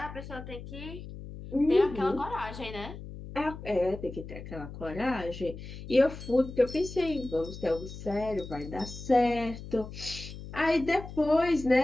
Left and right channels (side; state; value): left; noise; hum, 12 dB below the sound